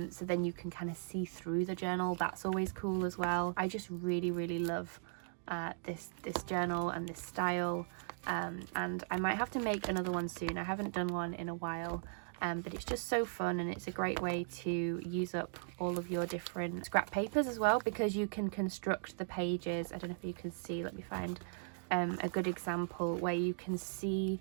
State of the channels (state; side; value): silent; left; digital silence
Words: then you can kind of see through the journal. That's always cool as well. I just really love this journal and this style, and I might have to make another one soon. I haven't done one in a while, but it's just so fun, and it's a great way to use up all of your different scrap papers as well, because you can construct the pages. I don't know if you can see, let me find a good example where you can see